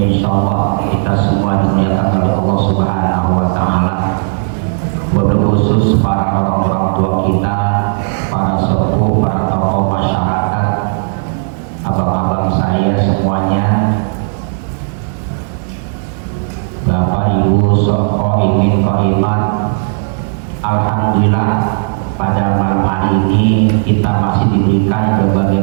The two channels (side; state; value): left; silent; digital silence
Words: insyaallah kita semua dimuliakan oleh Allah Subhanahu wa taala. Wabil khusus para orang-orang tua kita, para sepuh, para tokoh masyarakat, abang-abang saya semuanya, Bapak Ibu Soko Imin Koimat. Alhamdulillah pada malam hari ini kita masih diberikan berbagai